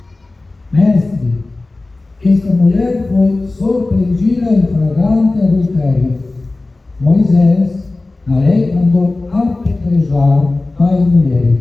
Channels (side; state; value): right; quieter; 3.2 dB